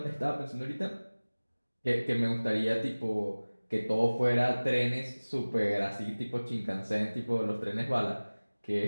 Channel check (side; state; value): both; inverted; correlation -1.00